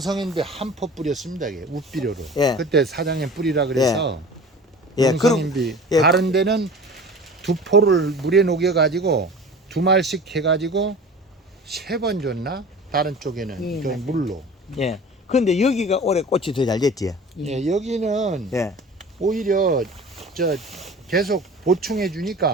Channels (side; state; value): both; normal; correlation 0.40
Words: 한 포 뿌렸습니다. 이게 우비료로. 예. 그때 사장님 뿌리라 그래서 예. 용성인비 예. 다른 데는 2포를 물에 녹여 가지고 2말씩 해 가지고 3번 줬나? 다른 쪽에는 그 물로. 예. 근데 여기가 올해 꽃이 더 잘 됐지. 예, 여기는 예. 오히려 저 계속 보충해